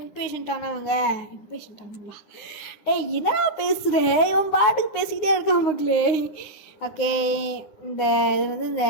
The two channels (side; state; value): right; late; 9.9 ms